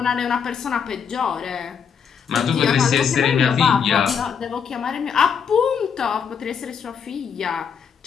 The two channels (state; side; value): quieter; right; 6.9 dB